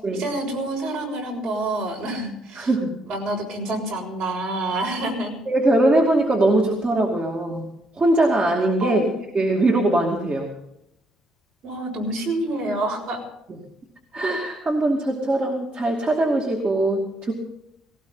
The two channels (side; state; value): both; normal; correlation 0.73